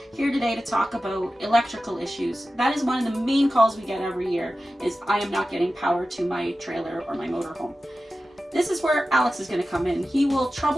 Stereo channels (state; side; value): normal; both; correlation 0.94